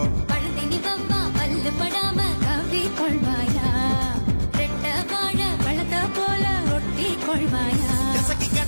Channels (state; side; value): inverted; both; correlation -1.00